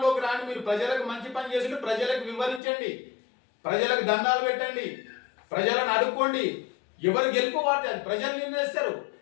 రాని, మీరు ప్రజలకు మంచి పని చేసి ప్రజలకు వివరించండి, ప్రజలకు దండాలు పెట్టండి, ప్రజలను అడుక్కోండి. ఎవరు గెలుపు వాటి అది ప్రజలు నిర్ణయిస్తారు.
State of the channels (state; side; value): drops out; right; at 2.6 s